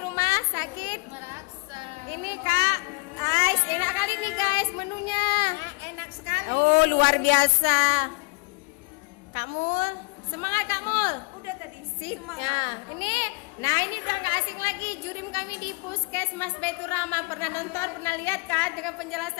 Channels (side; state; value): right; quieter; 30.1 dB